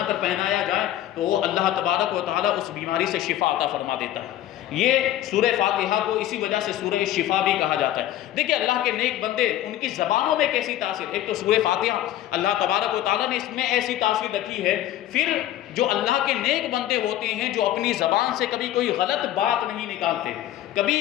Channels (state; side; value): quieter; right; 13.0 dB